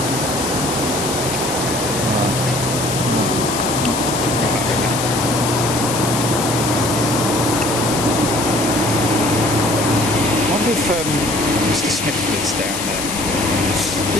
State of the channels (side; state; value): left; noise; hiss, 4 dB below the sound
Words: If Mr. Smith lives down there.